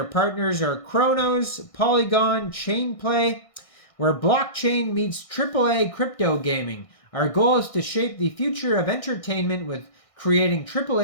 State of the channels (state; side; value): late; right; 1.6 ms